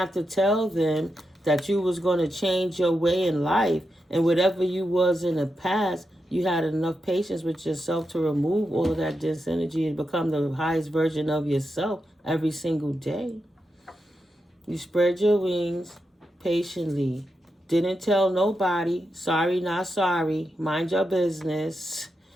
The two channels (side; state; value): both; normal; correlation 0.87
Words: to tell them that you was going to change your way in life, and whatever you was in the past, you had enough patience with yourself to remove all of that dense energy and become the highest version of yourself every single day. You spread your wings patiently. Didn't tell nobody. Sorry, not sorry. Mind your business.